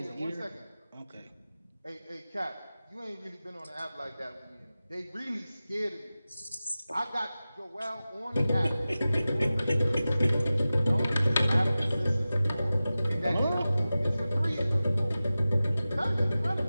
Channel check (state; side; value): inverted; both; correlation -0.96